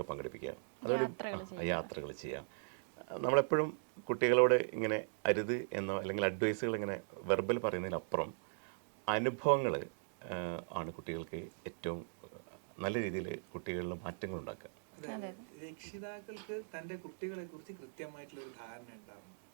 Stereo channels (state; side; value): silent; left; digital silence